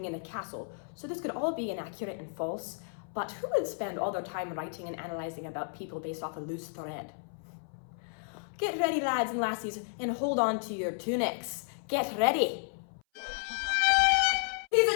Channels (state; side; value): silent; right; 56 dB below the other